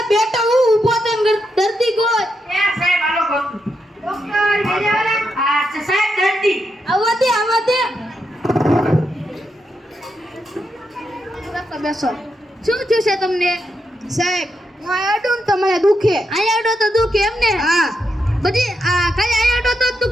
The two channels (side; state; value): both; normal; correlation 0.83